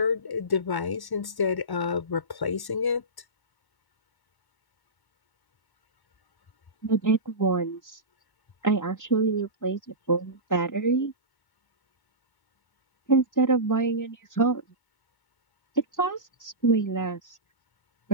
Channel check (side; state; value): right; late; 1.1 ms